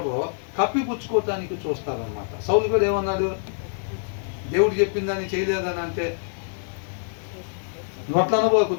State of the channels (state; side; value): silent; right; digital silence